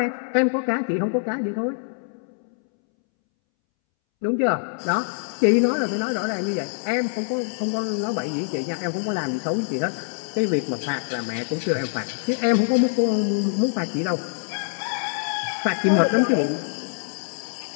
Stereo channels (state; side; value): silent; right; 62 dB below the other